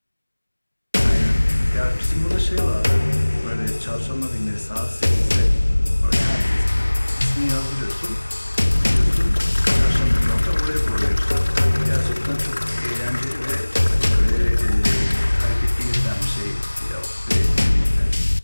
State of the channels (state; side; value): inverted; both; correlation -1.00